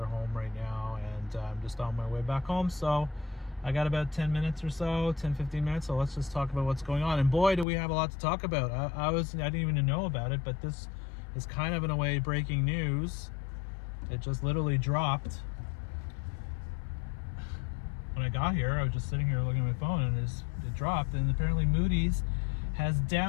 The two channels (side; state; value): right; drops out; at 7.7 s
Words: home right now, and I'm just on my way back home. So I got about 10 minutes or so, 10-15 minutes, so let's just talk about what's going on. And boy, do we have a lot to talk about. I didn't even know about it, but this is kind of, in a way, breaking news. It just literally dropped. When I got here, I was just sitting here looking at my phone, and it dropped. And apparently Moody's has